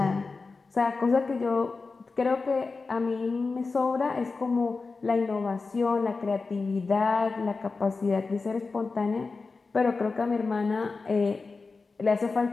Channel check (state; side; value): quieter; right; 4.1 dB